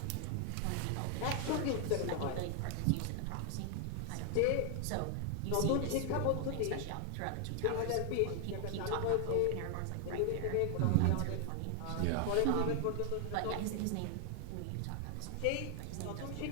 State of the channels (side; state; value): both; different; correlation 0.00